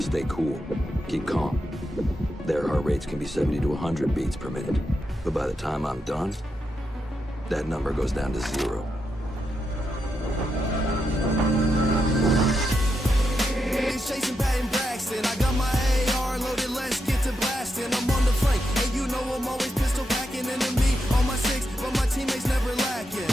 stay cool, keep calm. Their heart rates can be 70 to 100 beats per minute. But by the time I'm done, that number goes down to 0. It's Jason Patton Braxton. I got my AR loaded, let's get to blasting. I'm on the flank, and you know I'm always pistol packing. Enemy on my 6, but my teammates never lacking.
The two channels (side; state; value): both; normal; correlation 0.84